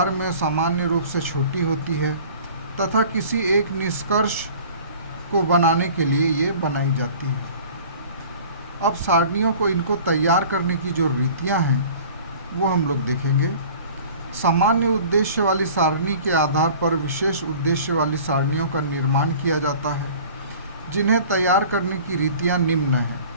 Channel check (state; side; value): inverted; both; correlation -0.46